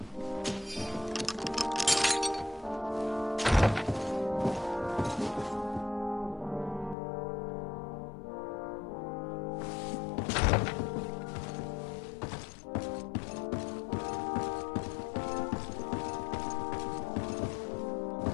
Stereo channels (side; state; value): right; drops out; at 7.0 s